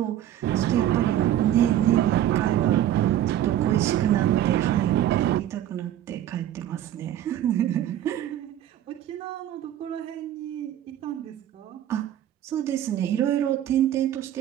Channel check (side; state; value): left; quieter; 11.8 dB